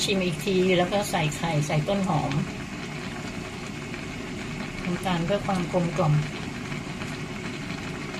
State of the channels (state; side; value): identical; both; correlation 1.00